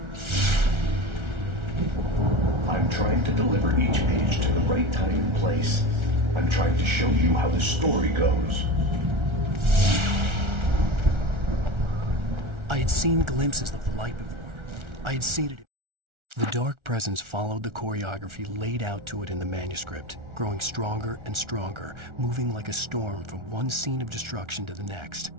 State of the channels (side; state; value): left; late; 1.4 ms